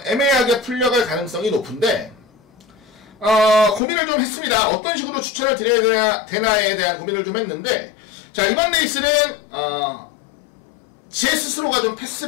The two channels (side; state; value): right; drops out; at 3.8 s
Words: 애매하게 풀려갈 가능성이 높은데, 고민을 좀 했습니다. 어떤 식으로 추천을 드려야 되나에 대한 고민을 좀 했는데, 자, 이번 레이스는, 제 스스로가 좀